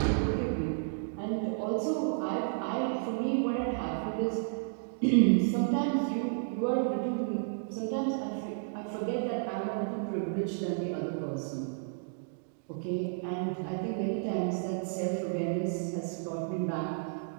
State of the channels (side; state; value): left; silent; digital silence